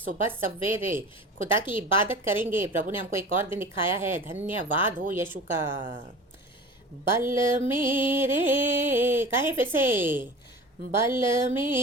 सवेरे खुदा की इबादत करेंगे। प्रभु ने हमको एक और दिन दिखाया है। धन्यवाद हो यीशु का। बल मेरे, कहें फिर से, बल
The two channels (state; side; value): normal; both; correlation 0.37